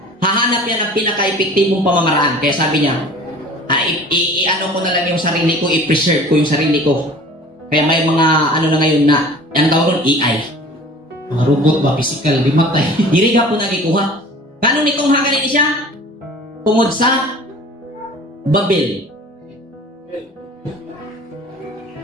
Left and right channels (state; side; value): normal; both; correlation 0.44